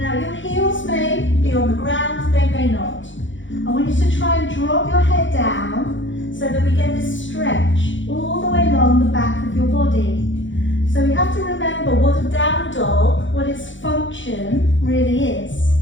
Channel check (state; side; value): late; right; 0.55 ms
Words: your heels may be on the ground, they may not. I want you to try and drop your head down so that we get this stretch all the way along the back of your body. So we have to remember what a down dog, what its function really is.